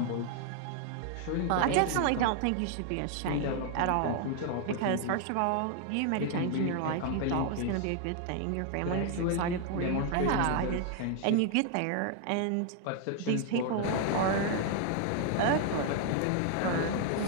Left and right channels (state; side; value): different; both; correlation 0.00